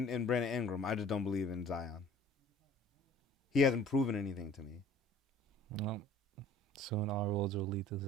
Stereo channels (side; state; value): both; normal; correlation 0.50